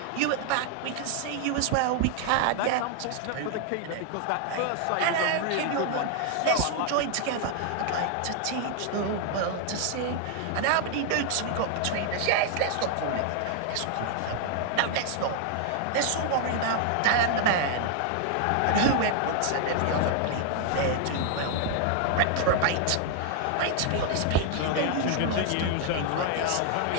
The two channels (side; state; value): both; different; correlation 0.00